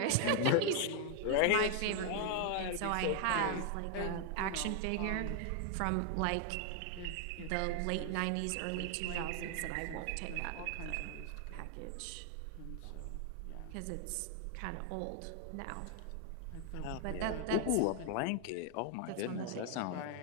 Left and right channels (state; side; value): different; both; correlation 0.01